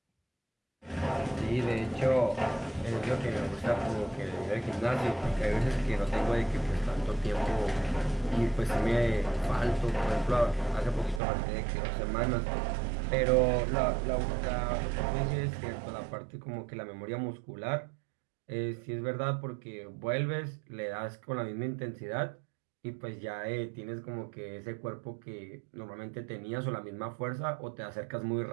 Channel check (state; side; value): drops out; left; at 11.2 s